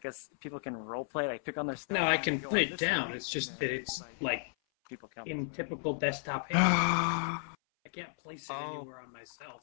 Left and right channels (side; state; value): right; silent; 55 dB below the other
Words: people can roleplay, like pick on their stuff. No, I can put it down. It's just that it's like people come. in typical desktop hand. I can't place it anywhere on myself.